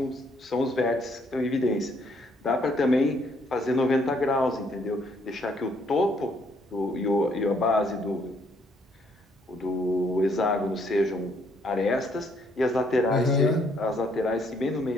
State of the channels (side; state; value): both; normal; correlation 0.68